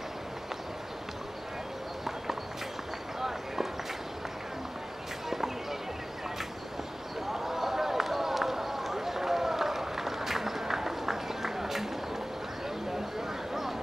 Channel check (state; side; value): normal; both; correlation 0.97